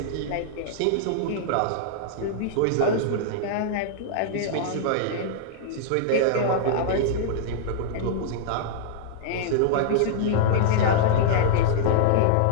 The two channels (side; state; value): both; different; correlation -0.02